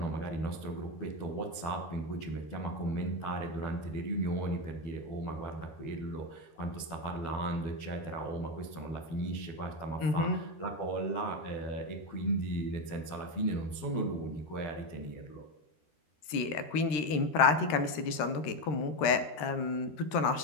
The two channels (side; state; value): right; late; 13 ms